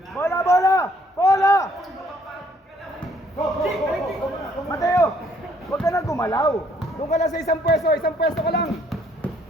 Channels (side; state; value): both; normal; correlation 0.65